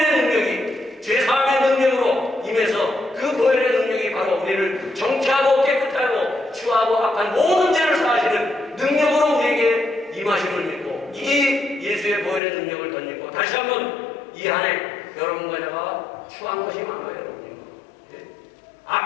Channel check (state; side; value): drops out; right; at 12.4 s